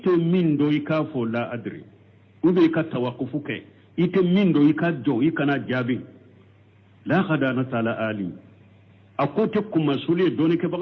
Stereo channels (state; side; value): identical; both; correlation 1.00